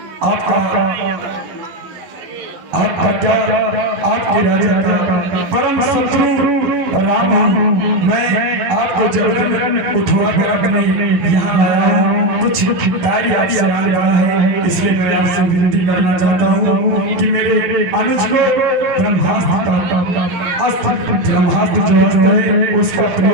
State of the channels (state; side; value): late; left; 11 ms